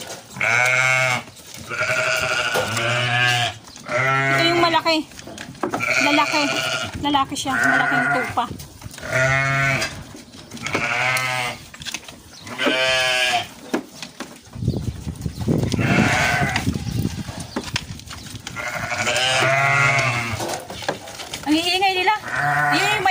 Ito yung malaki. Lalaki. Lalaki siya. Malaking tupa. Ang iingay nila. Ayun yung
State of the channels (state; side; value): identical; both; correlation 1.00